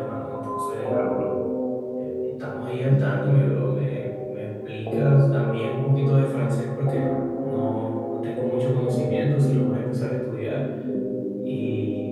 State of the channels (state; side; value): identical; both; correlation 1.00